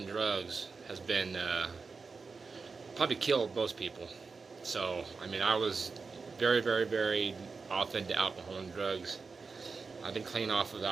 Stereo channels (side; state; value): left; quieter; 4.7 dB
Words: drugs has been probably killed most people. So I mean, I was very off into alcohol and drugs. I've been clean off of